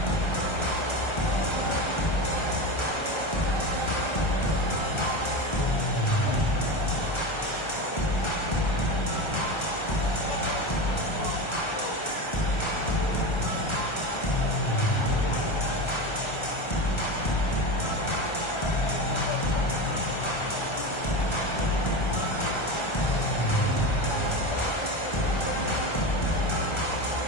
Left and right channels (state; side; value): late; right; 1.3 ms